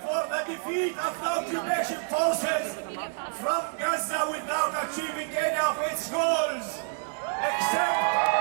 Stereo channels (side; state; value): left; silent; 59 dB below the other